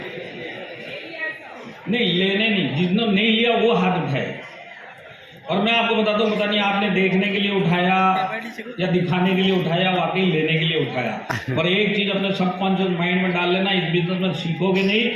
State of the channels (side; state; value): both; identical; correlation 1.00